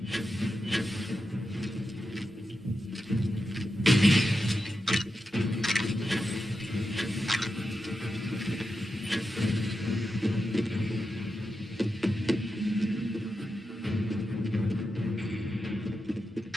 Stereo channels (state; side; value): normal; both; correlation 0.89